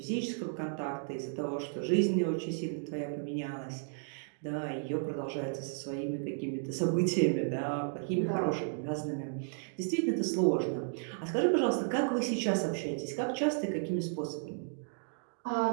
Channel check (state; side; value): silent; left; digital silence